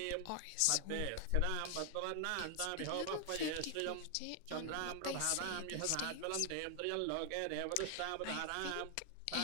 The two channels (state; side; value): different; both; correlation 0.00